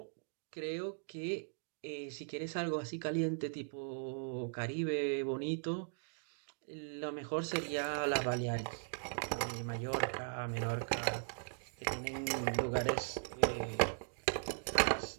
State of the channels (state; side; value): silent; left; digital silence